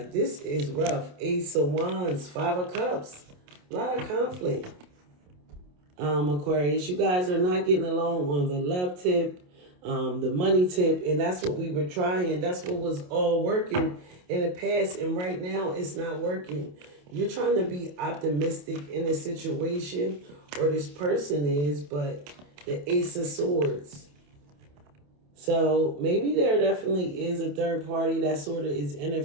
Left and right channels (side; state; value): left; late; 28 ms